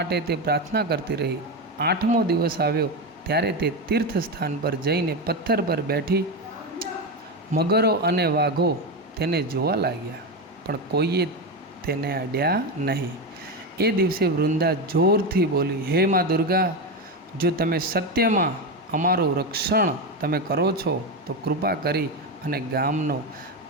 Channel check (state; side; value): normal; both; correlation 0.14